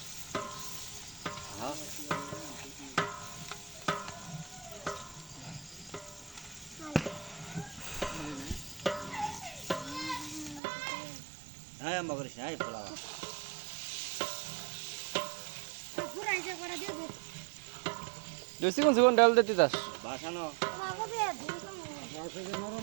হ্যাঁ হ্যাঁ আম্মা করিস না পোলাও চিকন চিকন ডাল দে তিতাস বাসানো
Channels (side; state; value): left; drops out; at 10.6 s